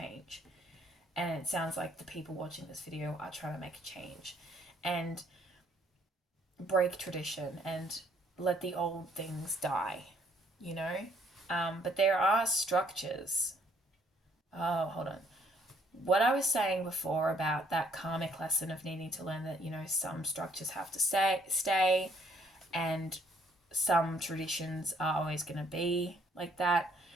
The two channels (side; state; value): both; normal; correlation 0.65